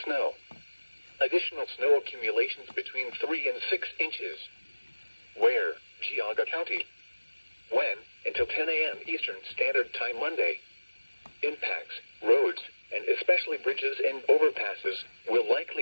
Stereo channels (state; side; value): inverted; both; correlation -1.00